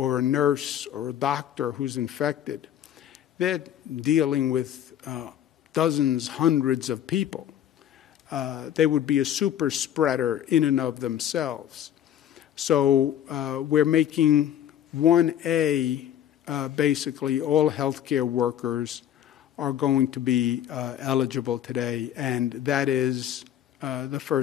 a nurse or a doctor who's infected, they're dealing with dozens, hundreds of people. They would be a super spreader in and of themselves. So we're making 1A, basically all healthcare workers are going to be eligible today, and that is the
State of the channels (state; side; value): quieter; right; 10.6 dB